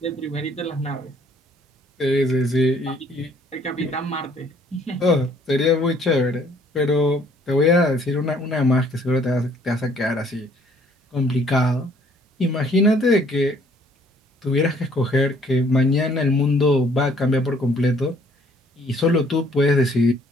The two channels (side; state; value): both; normal; correlation 0.61